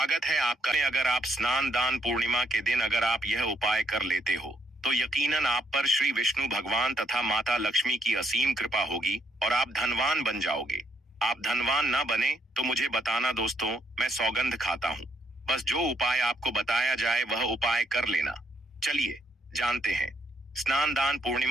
है आपका। अगर आप स्नान दान पूर्णिमा के दिन अगर आप यह उपाय कर लेते हो तो यकीनन आप पर श्री विष्णु भगवान तथा माता लक्ष्मी की असीम कृपा होगी और आप धनवान बन जाओगे। आप धनवान ना बने तो मुझे बताना दोस्तों, मैं सौगंध खाता हूँ। बस जो उपाय आपको बताया जाए वह उपाय कर लेना। चलिए जानते हैं। स्नान दान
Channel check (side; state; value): both; normal; correlation 0.72